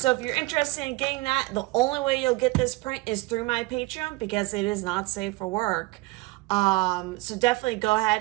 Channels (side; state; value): left; quieter; 21.9 dB